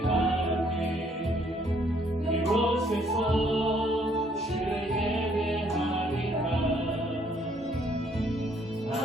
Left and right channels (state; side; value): normal; both; correlation 0.66